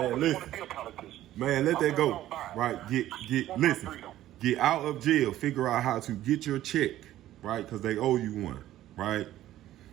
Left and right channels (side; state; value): left; quieter; 13.7 dB